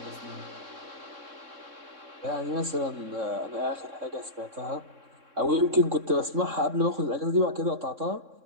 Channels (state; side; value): late; left; 3.6 ms